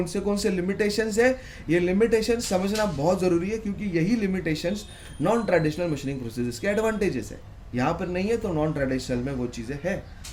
से लिमिटेशंस है, ये लिमिटेशंस समझना बहुत जरूरी है, क्योंकि यही limitations non traditional machining process के एडवांटेजेस है। यहाँ पर नहीं है तो नॉन ट्रेडिशनल में वो चीजें है।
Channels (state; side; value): identical; both; correlation 1.00